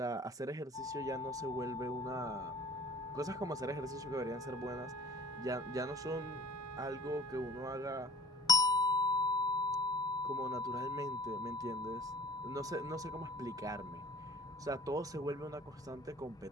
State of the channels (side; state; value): both; normal; correlation 0.45